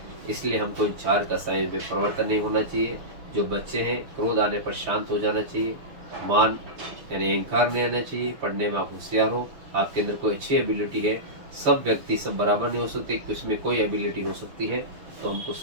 इसलिए हमको इन 4 कषायों में परिवर्तन नहीं होना चाहिए। जो बच्चे हैं, क्रोध आने पर शांत हो जाना चाहिए। मान यानी अहंकार नहीं आना चाहिए। पढ़ने में आप होशियार हो, आपके अंदर कोई अच्छी एबिलिटी है। सब व्यक्ति सब बराबर नहीं हो सकते, इसमें कोई एबिलिटी हो सकती है, तो हमको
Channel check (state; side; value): late; left; 6.6 ms